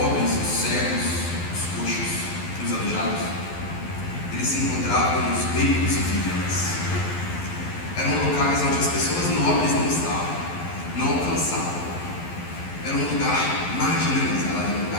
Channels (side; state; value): right; late; 11 ms